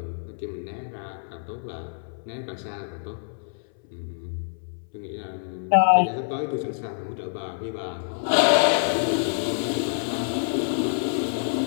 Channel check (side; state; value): right; silent; 60 dB below the other